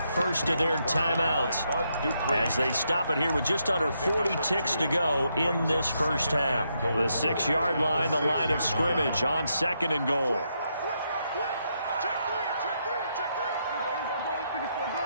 of their timeouts as they stop it here with just under 40 ticks to go in this first half. The 6-yard line, the line of scrimmage on 2nd and goal.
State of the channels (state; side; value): inverted; both; correlation -0.79